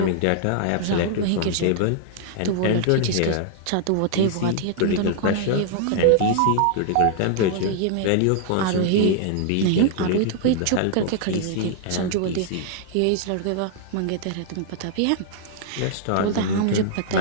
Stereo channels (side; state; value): both; different; correlation -0.01